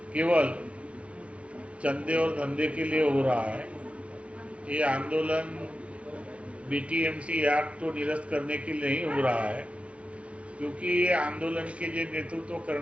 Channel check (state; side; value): late; left; 0.062 ms